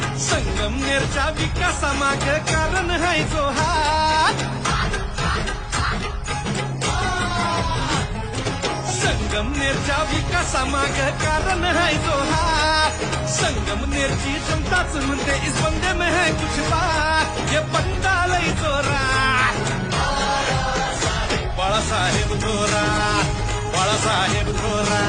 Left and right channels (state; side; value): identical; both; correlation 1.00